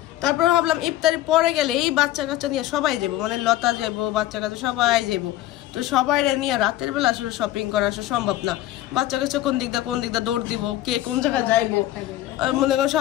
তারপর ভাবলাম ইফতারের পরে গেলে এই বাচ্চা কাচ্চা নিয়ে সবাই যাবো, মানে লতা যাবো, বাচ্চা কাচ্চা সবাই যাবো। তো সবাই নিয়ে রাতের বেলা আসলে শপিং করা আসলে সম্ভব না। বাচ্চা কাচ্চা কোন দিক দিয়ে দৌড় দিব, কে কোন জায়গায় যাইবো, মনে করো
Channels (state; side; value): quieter; right; 14.6 dB